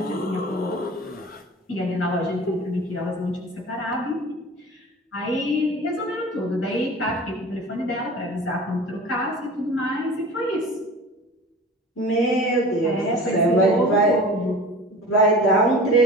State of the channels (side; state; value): both; normal; correlation 0.39